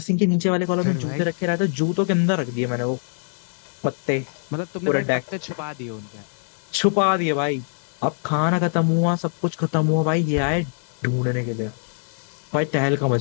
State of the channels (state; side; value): silent; right; digital silence